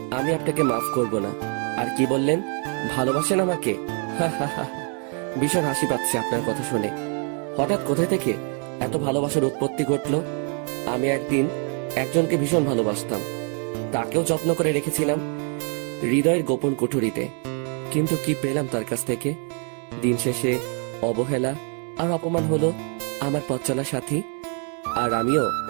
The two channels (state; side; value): quieter; left; 39.8 dB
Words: আমি আপনাকে মাফ করব না। আর কি বললেন, ভালোবাসেন আমাকে? ভীষণ হাসি পাচ্ছে আপনার কথা শুনে। হঠাৎ কোথায় থেকে এত ভালোবাসার উৎপত্তি ঘটলো? আমি একদিন একজনকে ভীষণ ভালোবাসতাম, তাকেও যত্ন করে রেখেছিলাম হৃদয়ের গোপন কুঠুরিতে। কিন্তু কি পেলাম তার কাছ থেকে? দিন শেষে অবহেলা আর অপমান হলো আমার পথ চলার সাথী। আর আমিও